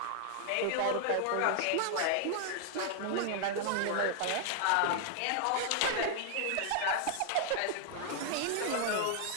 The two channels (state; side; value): different; both; correlation 0.00